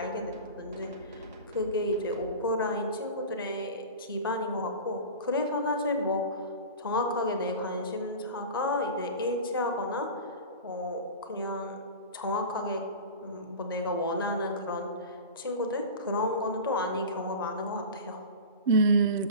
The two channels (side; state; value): both; inverted; correlation -0.31